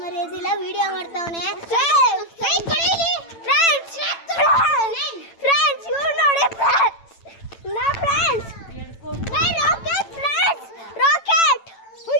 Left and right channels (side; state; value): right; late; 9.0 ms